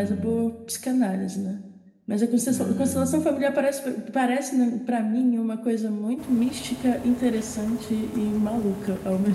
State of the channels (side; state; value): both; identical; correlation 1.00